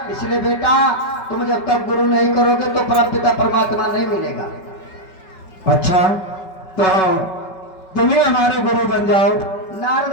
इसलिए बेटा तुम जब तक गुरु नहीं करोगे तो परम पिता परमात्मा नहीं मिलेगा। अच्छा, तो तुम ही हमारे गुरु बन जाओ। नारद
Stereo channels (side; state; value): right; late; 5.3 ms